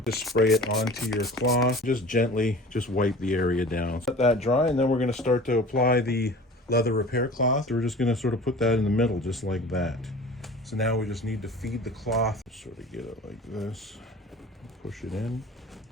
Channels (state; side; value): normal; both; correlation 0.41